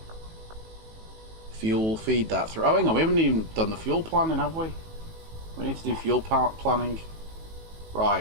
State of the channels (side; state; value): left; late; 18 ms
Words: Fuel, feed that through. Oh, hang on, we haven't even done the fuel planning, have we? We need to do fuel planning.